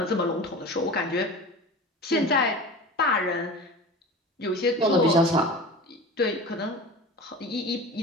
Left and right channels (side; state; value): both; normal; correlation 0.34